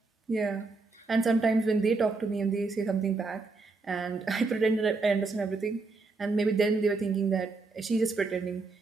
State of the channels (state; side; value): quieter; left; 3.9 dB